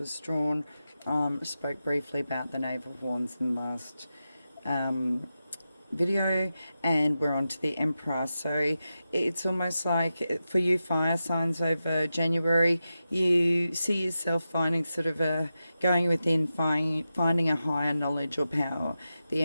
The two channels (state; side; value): inverted; both; correlation -0.91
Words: drawn. Spoke briefly about the Knave of Wands in the last video, and we're on to the Emperor. So it's almost like for you fire signs over January, you see yourself finding sort of going within, finding a higher knowledge or power. The